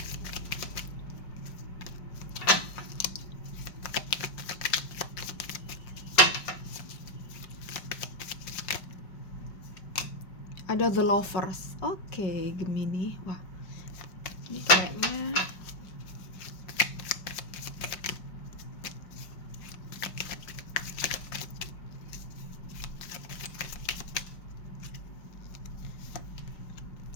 Ada The Lovers. Oke, Gemini. Wah, ini kayaknya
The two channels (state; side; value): late; right; 5.2 ms